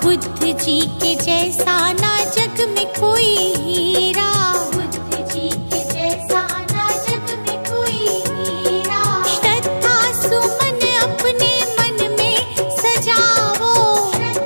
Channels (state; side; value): inverted; both; correlation -1.00